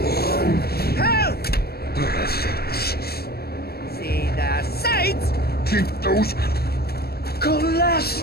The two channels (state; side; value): late; right; 0.46 ms